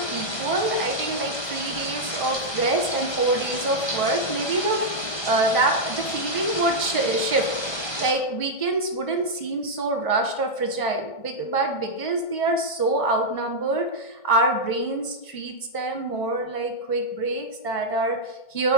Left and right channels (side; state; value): right; late; 1.5 ms